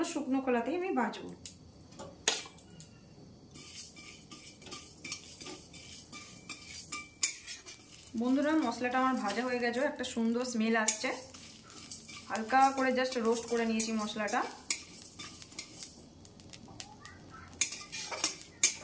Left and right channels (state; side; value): identical; both; correlation 1.00